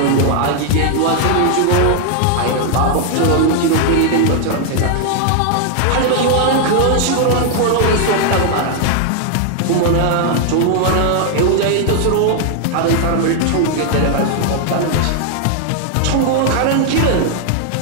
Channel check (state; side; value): different; both; correlation 0.00